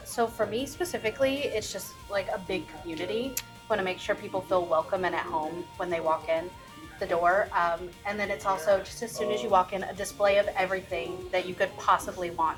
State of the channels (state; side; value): identical; both; correlation 1.00